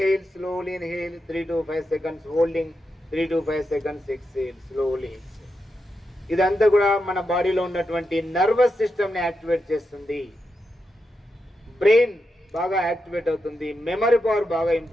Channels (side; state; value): both; normal; correlation 0.86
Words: slowly inhale. 3 to 5 seconds holding. 3 to 5 seconds exhale, slowly exhale. ఇదంతా కూడా మన బాడీలో ఉన్నటువంటి నర్వస్ సిస్టమ్ ని యాక్టివేట్ చేస్తుంది. బ్రెయిన్ బాగా యాక్టివేట్ అవుతుంది. మెమరీ పవర్ బాగా